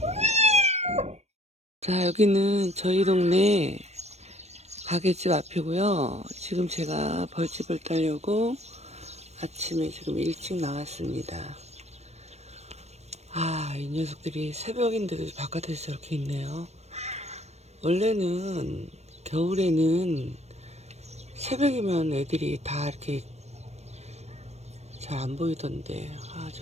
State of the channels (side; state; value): left; late; 0.31 ms